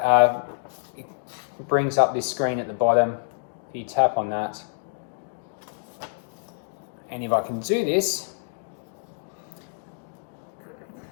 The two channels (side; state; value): right; silent; digital silence